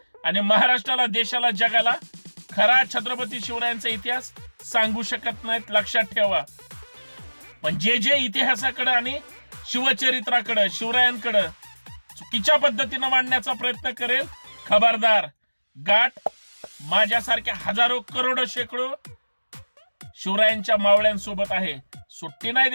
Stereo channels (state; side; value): inverted; both; correlation -1.00